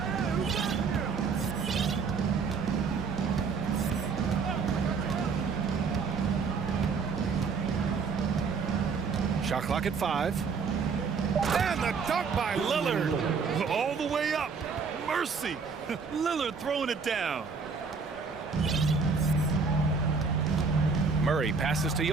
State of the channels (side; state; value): left; quieter; 5.2 dB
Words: Shot clock at 5. And the dunk by Lillard. All the way up. Mercy. Lillard throwing it down. Murray passes to